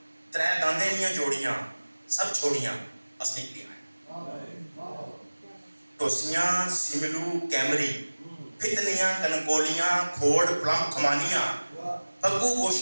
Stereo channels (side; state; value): both; inverted; correlation -1.00